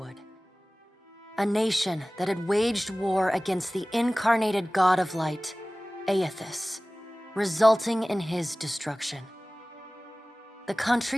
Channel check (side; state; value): both; normal; correlation 0.98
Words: a nation that had waged war against the incarnated god of light, Aethys, resulting in his destruction. The